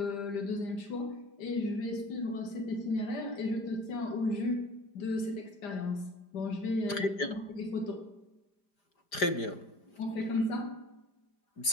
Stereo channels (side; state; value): right; late; 5.0 ms